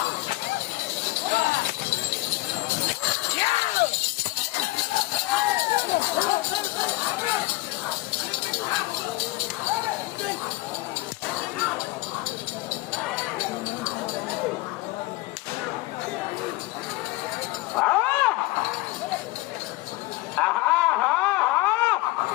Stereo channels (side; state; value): right; quieter; 20.9 dB